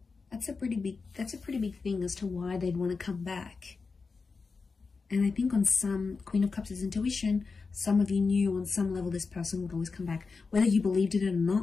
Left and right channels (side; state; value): right; quieter; 4.5 dB